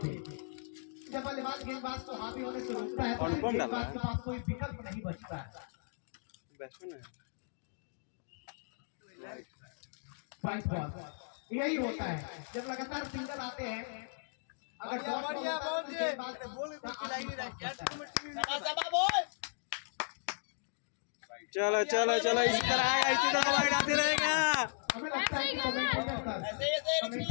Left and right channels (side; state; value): right; silent; digital silence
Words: जब बल्लेबाज गेंदबाज को हावी होने से रोकता है तो गेंदबाज के पास कोई विकल्प नहीं बचता है। वाइट बॉल यही होता है, जब लगातार सिंगल आते हैं, अगर बढ़िया चलो चलो चलो, इसी तरह आएगा, इसी तरह वाइड आते रहेगा। हमें लगता है कि